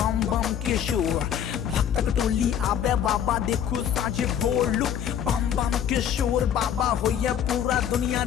बम के शोर भक्तक टोली आबे बाबा देखू साझे भोर लुक बम बम के शोर बाबा होइया पूरा दुनिया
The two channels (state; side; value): quieter; right; 9.3 dB